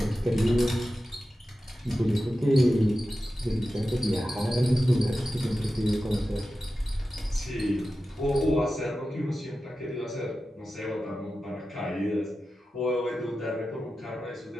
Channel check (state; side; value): normal; both; correlation 0.93